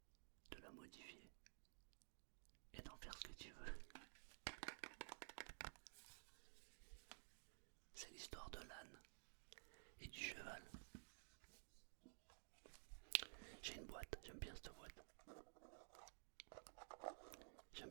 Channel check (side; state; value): left; silent; digital silence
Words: de la modifier et d'en faire ce que tu veux. C'est l'histoire de l'âne et du cheval. J'ai une boîte, j'aime bien cette boîte. J'aime